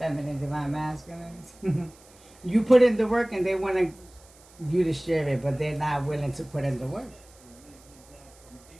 divine masculine. You put in the work and they want you to share it, but they're not willing to put in the work.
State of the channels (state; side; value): noise; right; hiss, 26 dB below the sound